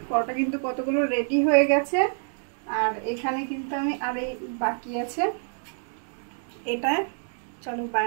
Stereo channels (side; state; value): left; silent; digital silence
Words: পরোটা কিন্তু কতগুলো রেডি হয়ে গেছে। আর এখানে কিন্তু আমি আর এই বাকি আছে, এটা চলো